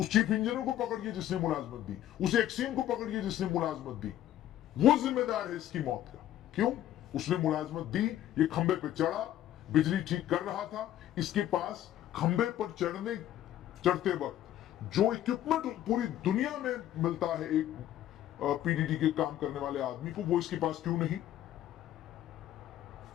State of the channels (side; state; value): right; quieter; 12.4 dB